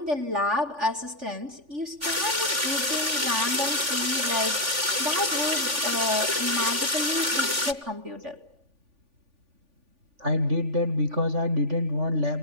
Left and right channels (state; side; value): late; left; 3.5 ms